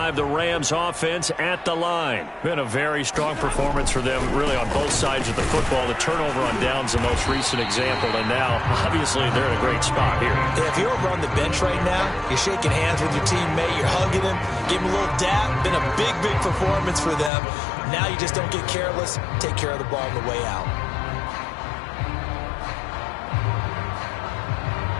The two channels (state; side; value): drops out; right; at 17.3 s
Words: the Rams offense at the line. Been a very strong performance for them, really, on both sides of the football. The turnover on downs, the most recent example, and now, obviously, they're in a great spot here. Yeah, if you're over on the bench right now, you're shaking hands with your teammate, you're hugging him, give him a little dap. Been a big, big performance for them. Now you just don't get careless. Take care of the ball on the way out.